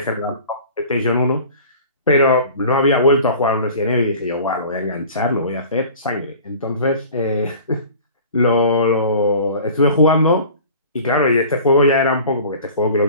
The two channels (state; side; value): inverted; both; correlation -0.44